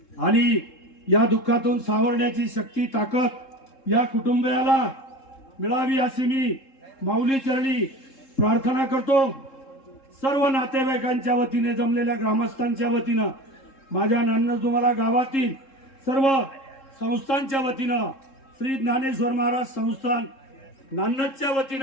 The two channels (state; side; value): late; right; 3.7 ms